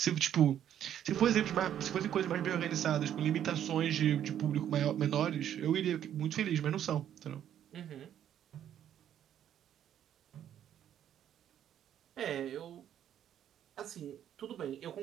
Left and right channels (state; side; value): quieter; left; 10.3 dB